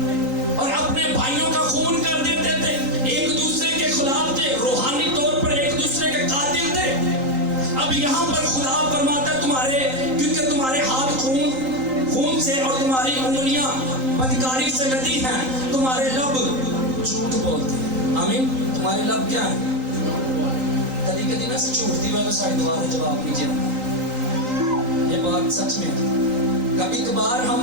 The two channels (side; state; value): left; late; 3.8 ms